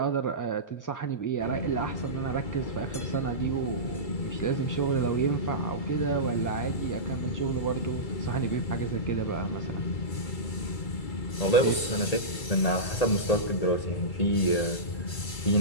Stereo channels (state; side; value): late; right; 2.3 ms